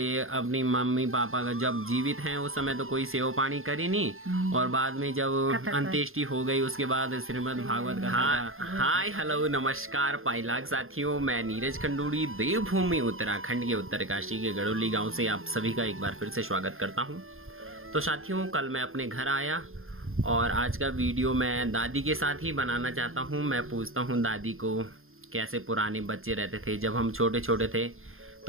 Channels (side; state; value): left; late; 0.60 ms